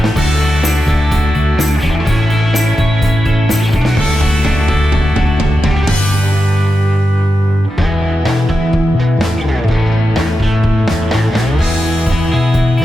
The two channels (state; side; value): normal; both; correlation 0.89